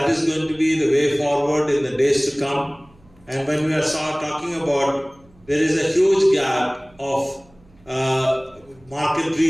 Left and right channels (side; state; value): right; noise; hum, 29 dB below the sound